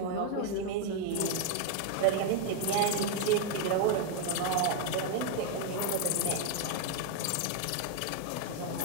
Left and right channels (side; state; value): both; different; correlation 0.00